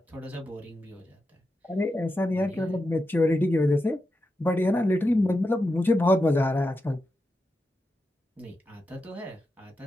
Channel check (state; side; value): normal; both; correlation 0.88